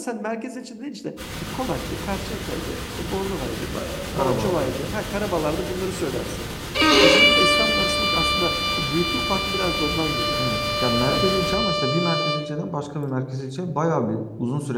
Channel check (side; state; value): both; identical; correlation 1.00